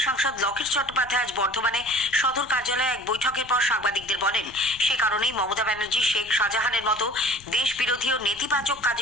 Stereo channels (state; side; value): noise; left; rumble, 22 dB below the sound